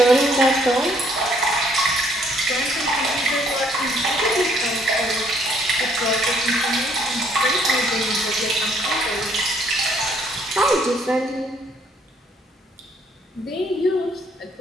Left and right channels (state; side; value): normal; both; correlation 0.65